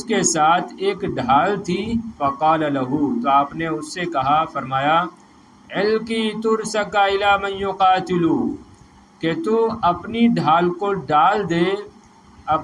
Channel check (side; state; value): both; identical; correlation 1.00